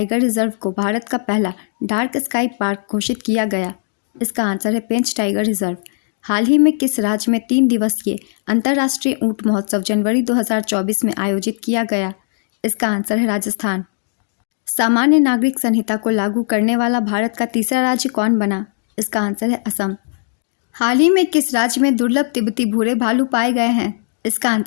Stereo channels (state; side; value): silent; right; digital silence